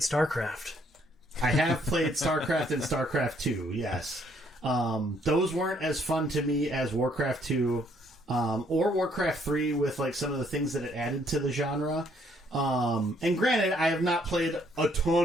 I have played StarCraft and StarCraft 2, yes. Those weren't as fun to me as Warcraft 2 or Warcraft 3 with like some of the things that it added to the genre. And granted, I have not played a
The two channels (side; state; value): both; normal; correlation 0.67